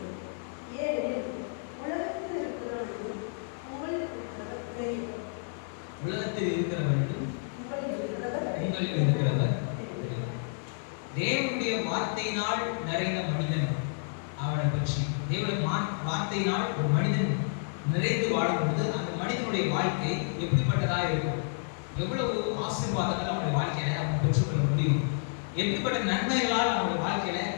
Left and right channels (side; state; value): right; silent; 55 dB below the other